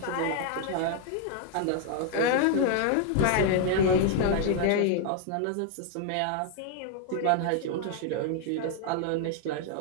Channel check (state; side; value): different; both; correlation 0.00